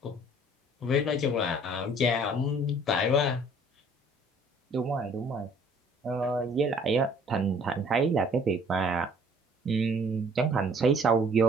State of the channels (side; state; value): both; normal; correlation 0.56